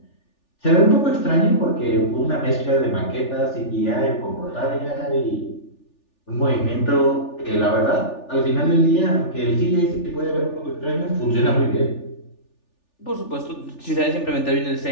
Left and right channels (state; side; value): late; right; 3.4 ms